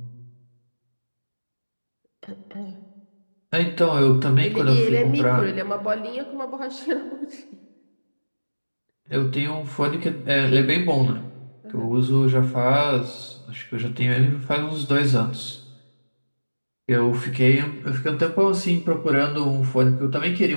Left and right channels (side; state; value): both; inverted; correlation -1.00